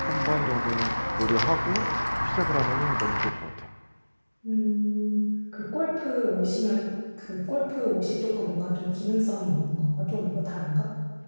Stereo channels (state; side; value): inverted; both; correlation -1.00